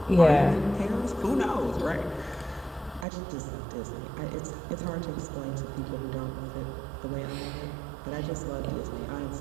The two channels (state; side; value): drops out; left; at 3.1 s